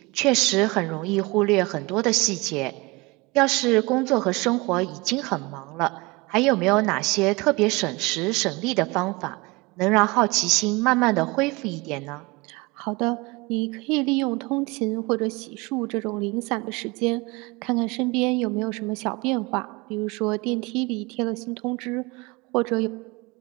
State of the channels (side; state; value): left; quieter; 24.2 dB